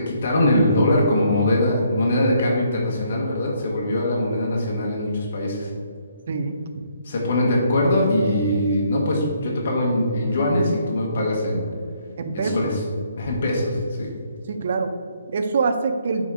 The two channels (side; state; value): both; inverted; correlation -0.69